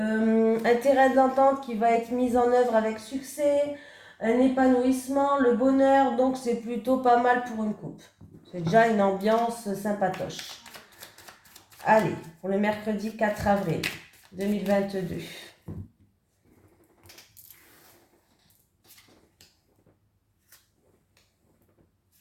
terrain d'entente qui va être mis en œuvre avec succès, un épanouissement, le bonheur, donc c'est plutôt pas mal pour une coupe. C'est déjà une ambiance sympatoche. Allez, pour le mercredi 4 avril 2022.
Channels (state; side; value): identical; both; correlation 1.00